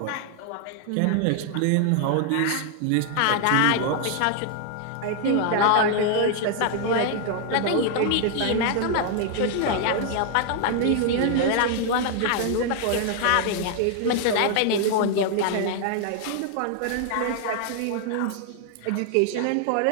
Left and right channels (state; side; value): different; both; correlation 0.00